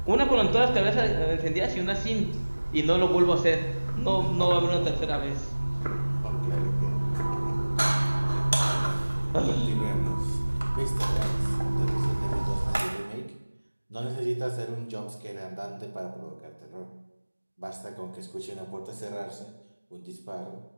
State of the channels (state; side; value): inverted; both; correlation -1.00